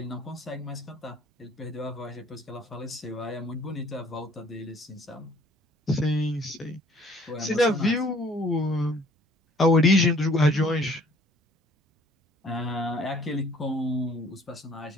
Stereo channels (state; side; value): normal; both; correlation 0.56